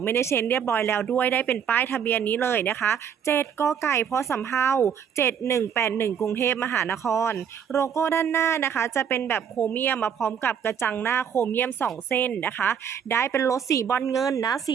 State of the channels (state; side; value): quieter; left; 7.9 dB